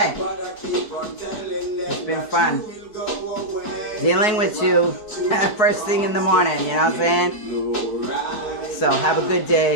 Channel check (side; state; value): right; late; 4.7 ms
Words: it's been fun dealing with you first thing in the morning, you know what I'm saying? So have a good